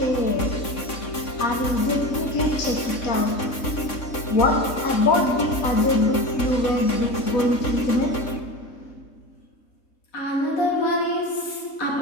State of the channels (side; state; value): right; late; 3.6 ms